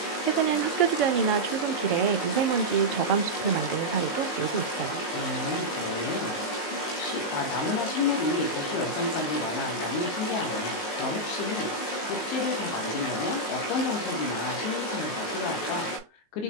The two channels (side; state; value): right; late; 19 ms